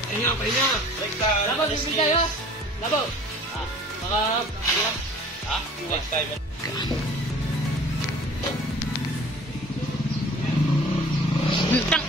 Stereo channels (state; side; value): normal; both; correlation 0.48